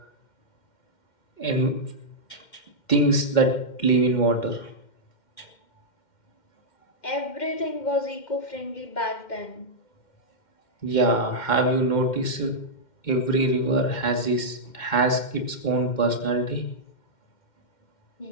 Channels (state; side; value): late; right; 2.1 ms